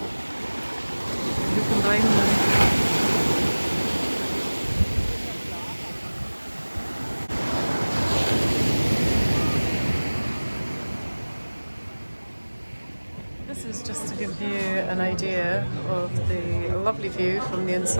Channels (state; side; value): inverted; both; correlation -1.00